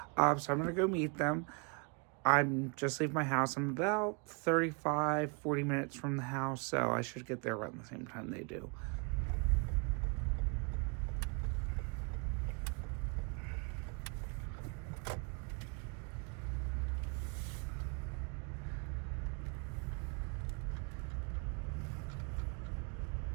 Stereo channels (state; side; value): quieter; left; 34.1 dB